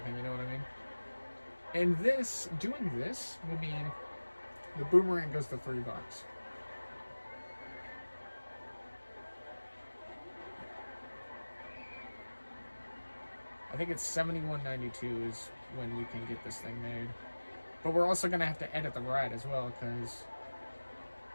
you know what I mean? And this, doing this will mean the boomerang goes to $3. I think it's $71.92 is when we can get this thing made. But we're also going to have to edit the ride as well, because,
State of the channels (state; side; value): inverted; both; correlation -1.00